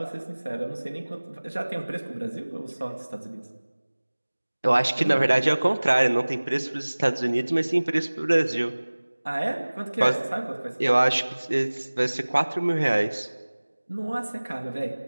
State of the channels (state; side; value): inverted; both; correlation -1.00